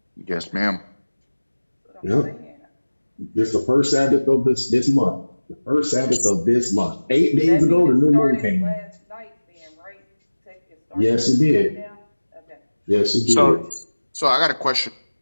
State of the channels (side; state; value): both; inverted; correlation -1.00